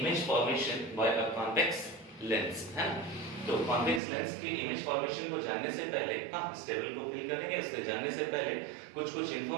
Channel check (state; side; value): drops out; left; at 4.0 s